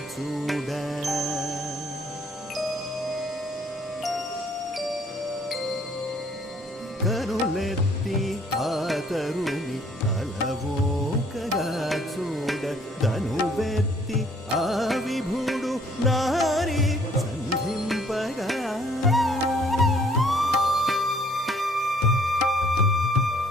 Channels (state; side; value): normal; both; correlation 0.61